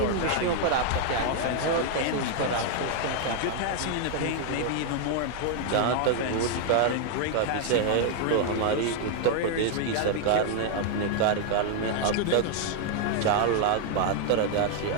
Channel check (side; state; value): both; different; correlation 0.00